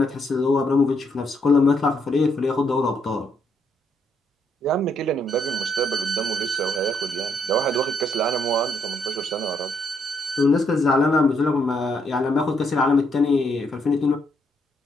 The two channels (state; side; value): normal; both; correlation 0.74